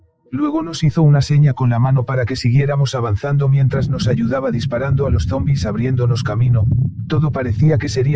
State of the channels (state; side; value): identical; both; correlation 1.00